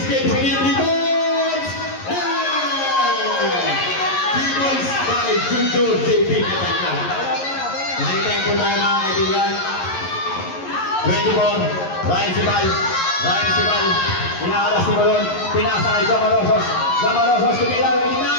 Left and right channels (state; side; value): late; right; 11 ms